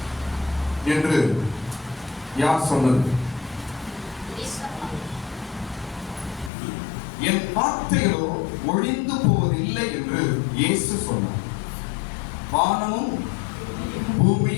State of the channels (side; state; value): right; drops out; at 6.5 s